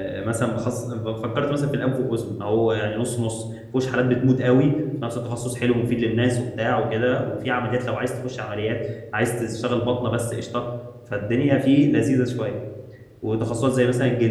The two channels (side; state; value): both; identical; correlation 1.00